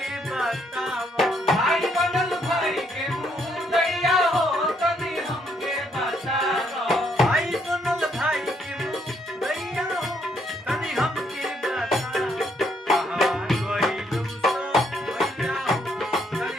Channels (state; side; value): normal; both; correlation 0.71